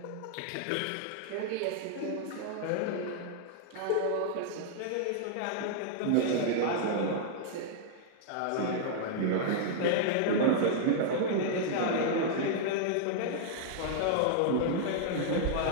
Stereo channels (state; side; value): different; both; correlation -0.01